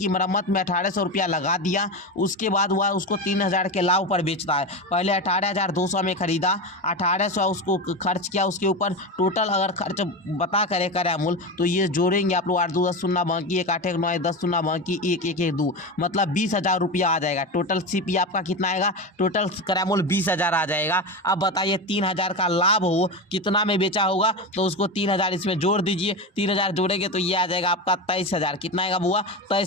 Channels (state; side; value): normal; both; correlation 0.20